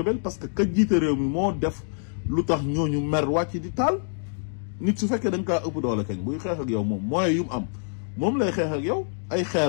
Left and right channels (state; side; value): silent; right; digital silence